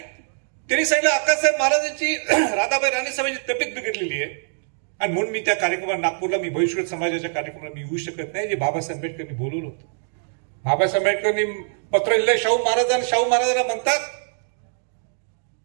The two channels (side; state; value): left; silent; digital silence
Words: सांगितलं आकाशसाहेब महाराजांची राधाबाई राणीसाहेबांची तब्येत बिघडलेली आहे आणि म्हणून मी त्या कार्यक्रमाला नागपूरला मी भविष्य समाजाच्या कार्यक्रमाला मी येऊ शकत नाही, जे बाबासाहेब आंबेडकरांनी बोलवलं होतं. बाबासाहेब आंबेडकरांनी पत्र लिहिलं शाहू महाराज, आणि शाहू महाराजांना म्हणतात